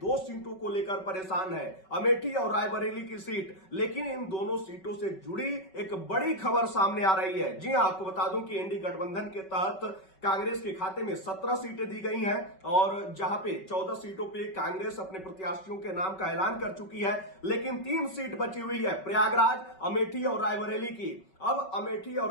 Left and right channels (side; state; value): right; late; 5.3 ms